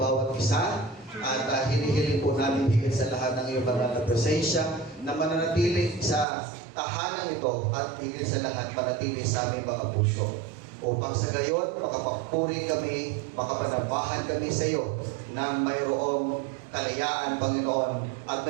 isa. At hinihiling po namin higit sa lahat ng iyong banal na presensya na mananatili sa tahanan ito at higit sa lahat manatili sa aming mga puso. Upang sa gayon, makapagpuri kami, makapanambahan kami sa iyo na mayroong kalayaan, Panginoon, at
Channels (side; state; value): left; drops out; at 6.2 s